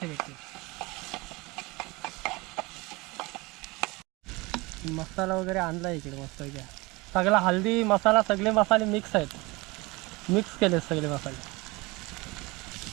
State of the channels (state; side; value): quieter; left; 24.0 dB